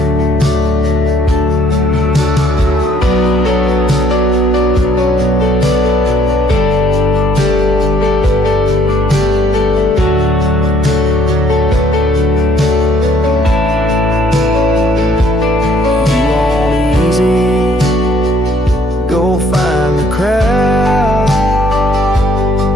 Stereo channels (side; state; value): both; normal; correlation 0.63